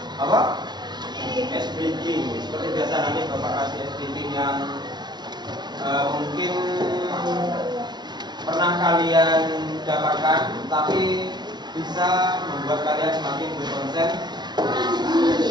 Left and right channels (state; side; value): late; left; 0.20 ms